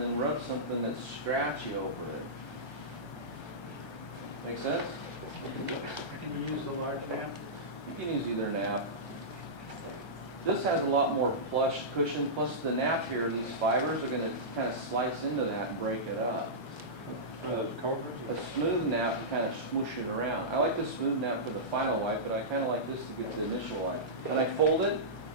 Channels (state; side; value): late; right; 1.3 ms